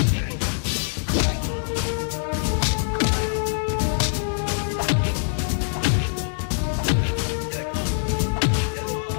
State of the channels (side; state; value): right; silent; 63 dB below the other